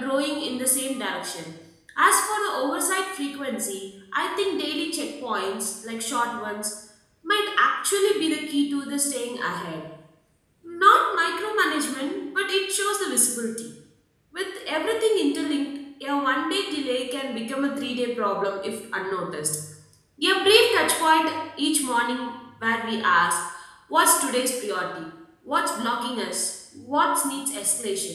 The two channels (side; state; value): both; identical; correlation 1.00